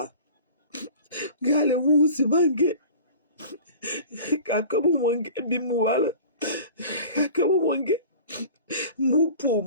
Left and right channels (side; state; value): both; inverted; correlation -0.41